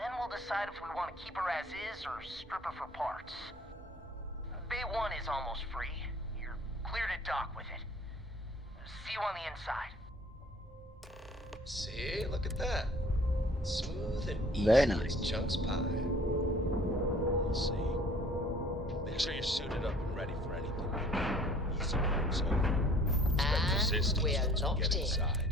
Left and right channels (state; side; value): normal; both; correlation 0.52